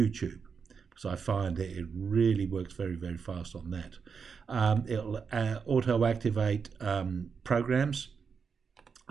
because I find that it really works very, very fast on that. It'll auto-activate programs,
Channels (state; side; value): quieter; left; 5.9 dB